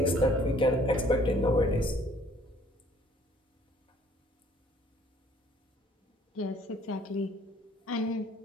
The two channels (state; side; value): normal; both; correlation 0.58